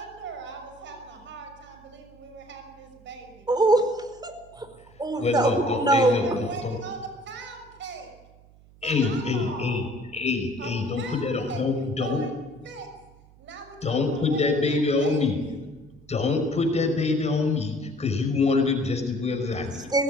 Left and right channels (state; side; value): noise; right; hum, 25 dB below the sound